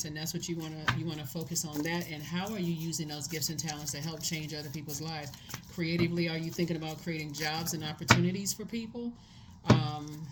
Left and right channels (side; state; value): both; identical; correlation 1.00